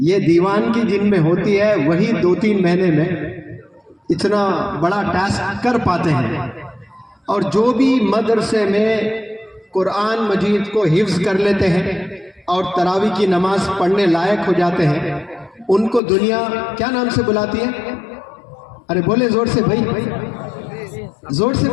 یہ دیوان کی جن میں ہوتی ہے وہی 2-3 مہینے میں اتنا بڑا ٹاسک کر پاتے ہیں۔ اور جو بھی مدرسے میں قرآن مجید کو حفظ کر لیتے ہیں اور تراویح کی نماز پڑھنے لائق ہو جاتے ہیں، ان کو دنیا کیا نام سے بلاتی ہے؟ ارے بولے زور سے بھائی، زور سے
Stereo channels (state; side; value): drops out; right; at 16.0 s